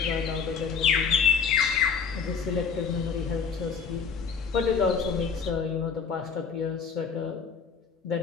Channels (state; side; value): quieter; right; 5.9 dB